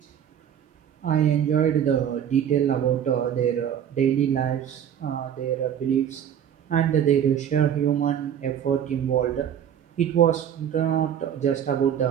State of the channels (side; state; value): left; quieter; 9.3 dB